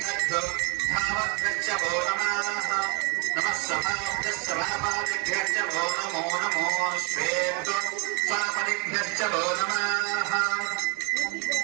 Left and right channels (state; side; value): quieter; left; 33.5 dB